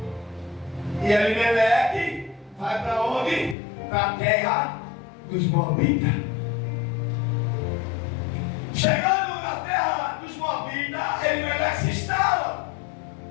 E Elimeleque vai para onde? Para a terra dos Moabitas. Chegando na terra dos Moabitas, Elimeleque se instala.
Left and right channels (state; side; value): drops out; right; at 3.6 s